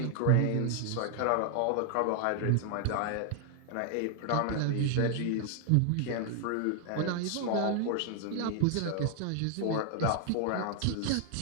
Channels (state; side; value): different; both; correlation 0.00